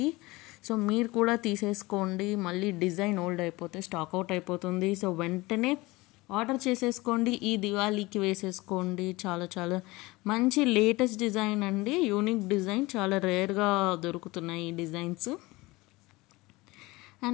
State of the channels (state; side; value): quieter; right; 21.6 dB